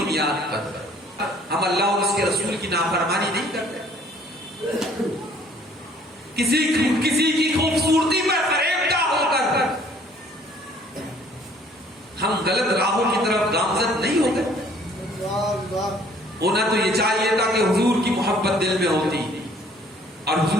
پر ہم اللہ اور اس کے رسول کی نافرمانی نہیں کرتے. کسی کی خوبصورتی پر فریبدہ ہو کر ہم غلط راہوں کی طرف گامزن نہیں ہوتے. ہونا تو یہ چاہیے تھا کہ حضور کی محبت دل میں ہوتی اور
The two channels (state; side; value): normal; both; correlation 0.58